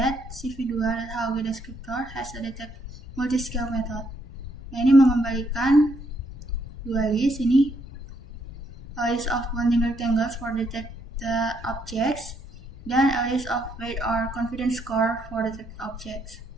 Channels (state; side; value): normal; both; correlation 0.74